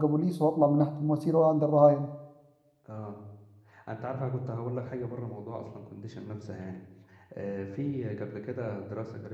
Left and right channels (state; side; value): identical; both; correlation 1.00